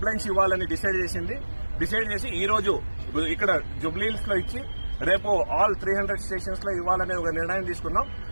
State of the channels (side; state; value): both; inverted; correlation -1.00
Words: ఇవ్వాలని డిసైడ్ చేసి ఈ రోజు ఇక్కడ జుబ్లీహిల్స్ లో ఇచ్చి రేపు ఆల్ 300 స్టేషన్స్ లో ఇవ్వాలనే ఒక నిర్ణయం తీసుకున్నాం.